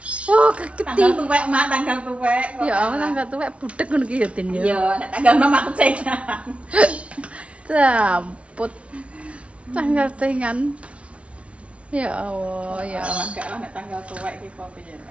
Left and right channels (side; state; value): left; late; 0.062 ms